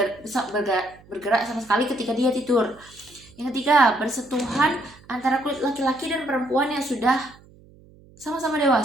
bergerak sama sekali ketika dia tidur. Yang ketiga, bersentuhan antara kulit laki-laki dan perempuan yang sudah sama-sama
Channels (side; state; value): right; noise; hum, 25 dB below the sound